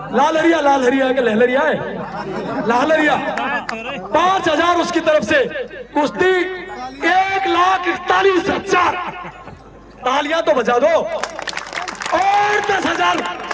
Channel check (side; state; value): both; identical; correlation 1.00